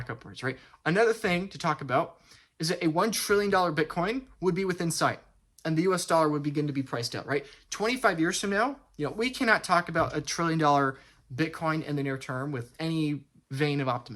upwards, right? Another thing to talk about is that a $1 trillion Bitcoin would be within sight, and the US dollar would begin to be priced out, right? 25 years from now, we cannot talk about a $1 trillion Bitcoin in the near term with any vein of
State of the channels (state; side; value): identical; both; correlation 1.00